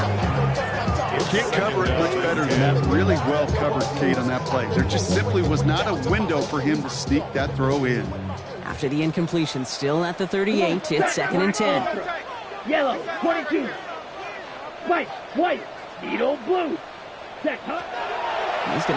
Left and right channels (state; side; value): identical; both; correlation 1.00